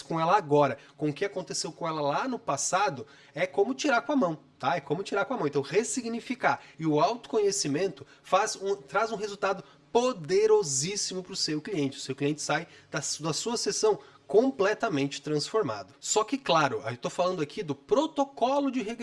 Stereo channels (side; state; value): both; identical; correlation 1.00